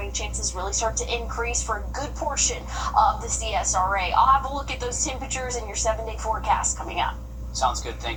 chances really start to increase for a good portion of the CSRA. I'll have a look at those temperatures in your 7-day forecast coming up. Sounds good.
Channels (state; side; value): identical; both; correlation 1.00